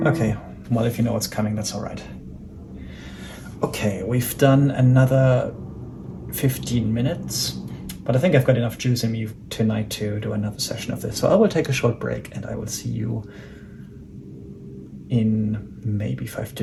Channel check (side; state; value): both; identical; correlation 1.00